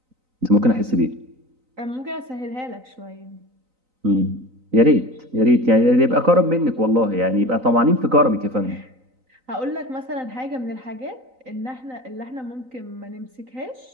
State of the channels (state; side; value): late; left; 3.9 ms